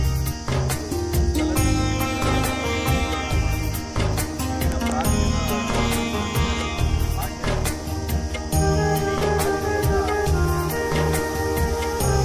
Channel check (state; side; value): identical; both; correlation 1.00